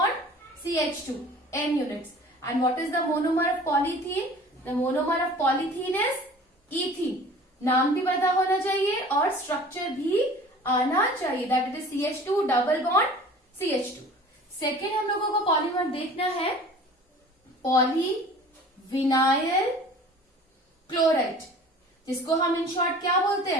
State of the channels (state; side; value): normal; both; correlation 0.45